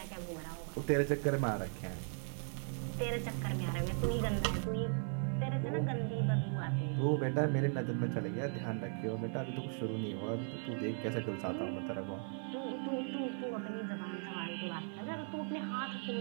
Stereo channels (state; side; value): silent; left; 53 dB below the other